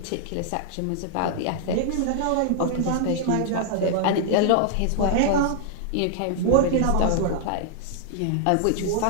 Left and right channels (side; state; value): both; different; correlation -0.01